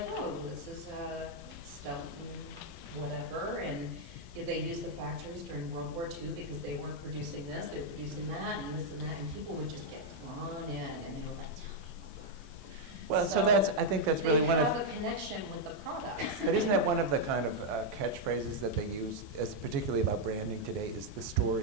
oh, this is a Stelton whatever, and they used the factories during World War II because they weren't producing this, they were producing that, and this and that, and people would just get drawn in, and they were like, tell me more. Well, so I think that's really one They of. have a connection with the products. But isn't that one of the kind of catchphrases that they use, as particularly about branding today, is the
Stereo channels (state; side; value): noise; left; hiss, 24 dB below the sound